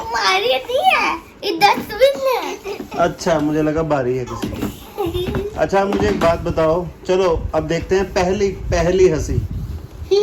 नहीं है, ये डस्टबिन है। अच्छा, मुझे लगा बारी है किसी की। अच्छा, मुझे एक बात बताओ। चलो अब देखते हैं पहली हंसी।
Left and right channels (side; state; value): both; identical; correlation 1.00